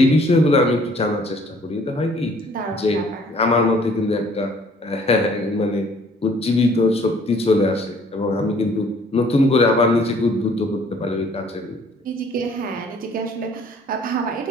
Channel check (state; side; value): normal; both; correlation 0.58